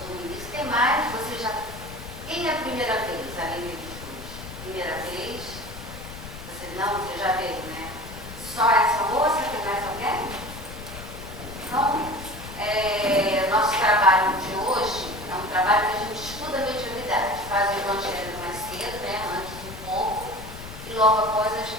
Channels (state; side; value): noise; left; rumble, 12 dB below the sound